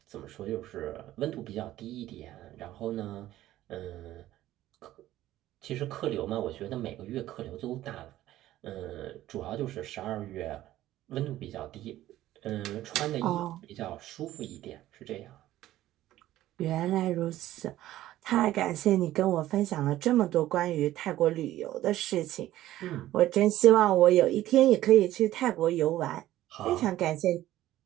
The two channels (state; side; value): quieter; left; 14.4 dB